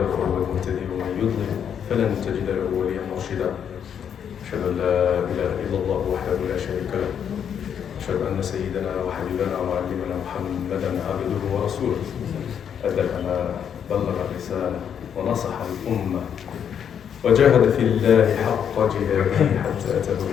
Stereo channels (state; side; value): quieter; right; 8.3 dB